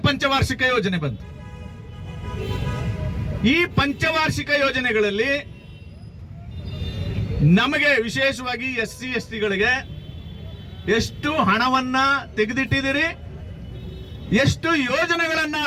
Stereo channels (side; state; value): both; identical; correlation 1.00